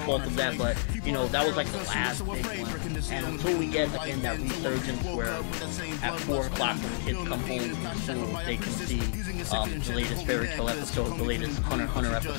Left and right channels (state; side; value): silent; right; 55 dB below the other